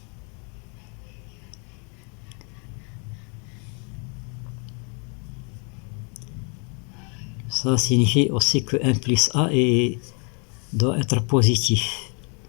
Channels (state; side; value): quieter; right; 36.5 dB